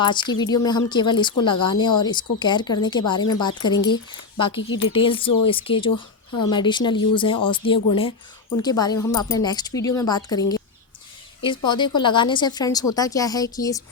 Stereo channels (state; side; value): quieter; right; 4.5 dB